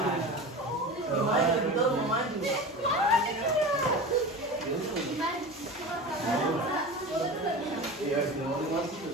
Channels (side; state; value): both; normal; correlation 0.31